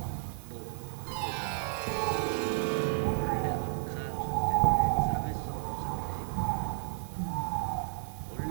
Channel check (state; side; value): silent; left; 56 dB below the other